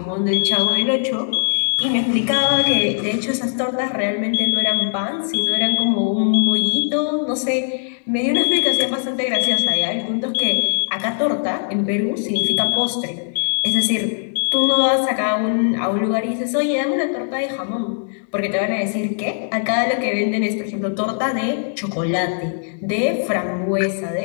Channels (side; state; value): right; silent; digital silence